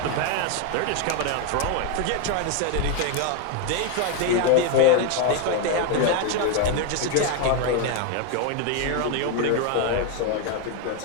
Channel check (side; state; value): both; different; correlation 0.01